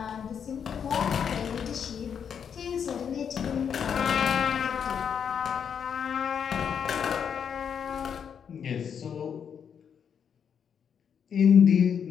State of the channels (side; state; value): right; quieter; 7.6 dB